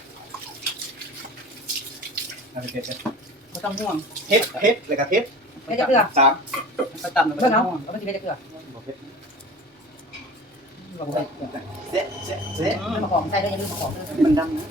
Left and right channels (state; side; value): normal; both; correlation 0.39